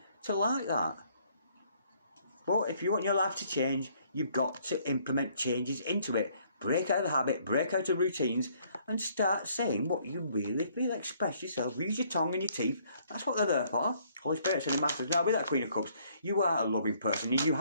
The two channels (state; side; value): inverted; both; correlation -0.64